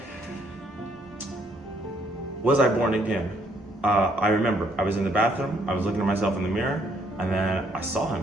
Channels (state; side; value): normal; both; correlation 0.68